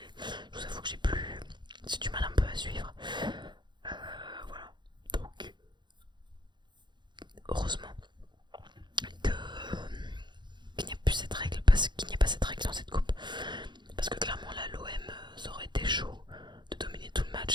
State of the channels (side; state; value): left; late; 0.22 ms